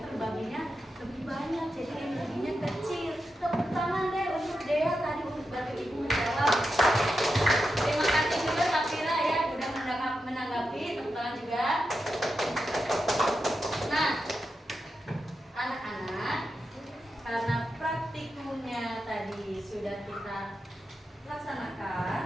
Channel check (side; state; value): both; normal; correlation 0.88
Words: lebih banyak, jadi energinya kecil. Tepuk tangan deh untuk Dea tadi untuk bantu ibu menjawab. Terima kasih juga Safira ya udah menanggapi. Tepuk tangan juga. Nah, anak-anak, karena praktikumnya tadi sudah kita